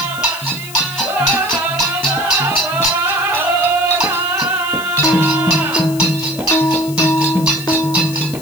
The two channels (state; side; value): noise; left; hiss, 14 dB below the sound